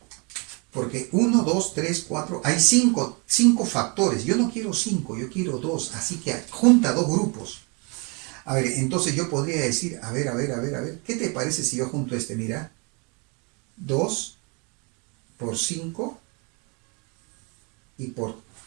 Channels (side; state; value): left; quieter; 31.7 dB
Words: Porque 1, 2, 3, 4, hay 5 factores. Yo no quiero 5, yo quiero 2. Así que junta dos grupos. A ver, entonces yo podría decir, a ver. ¿Qué te parece si yo junto este? Mira. 2 por 5 y por